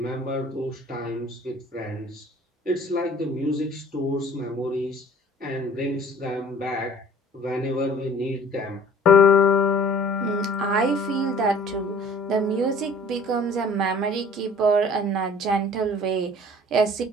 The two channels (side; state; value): both; normal; correlation 0.50